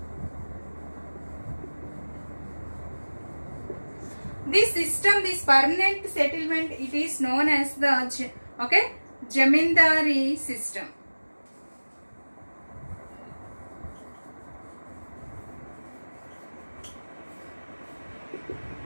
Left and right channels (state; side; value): inverted; both; correlation -1.00